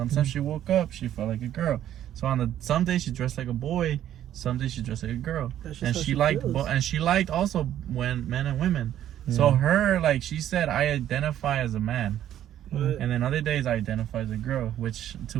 she woke up, she felt like a girl. So some days she dressed like a boy, some days she dressed like a girl. And she liked also when men and women. So her, like she said, I identify as a man. And then other days I identify as a girl, which to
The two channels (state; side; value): quieter; left; 11.4 dB